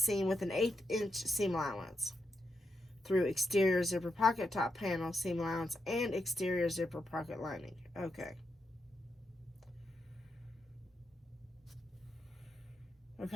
with an 1/8 inch seam allowance through exterior zipper pocket top panel seam allowance and exterior zipper pocket lining. Okay.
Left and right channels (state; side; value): normal; both; correlation 0.83